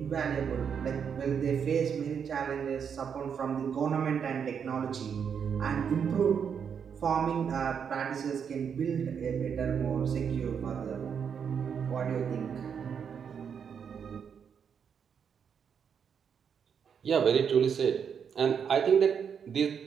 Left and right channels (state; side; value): quieter; left; 7.2 dB